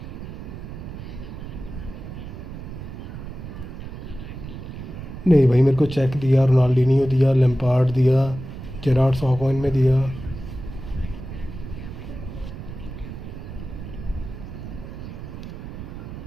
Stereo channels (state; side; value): noise; right; rumble, 10 dB below the sound